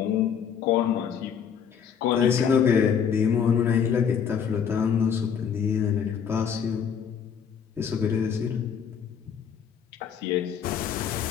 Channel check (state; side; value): quieter; right; 7.5 dB